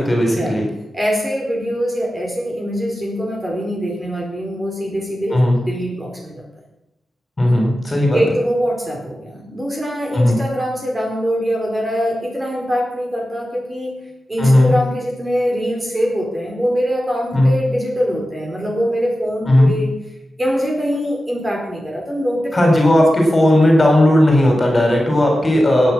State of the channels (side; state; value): both; normal; correlation 0.93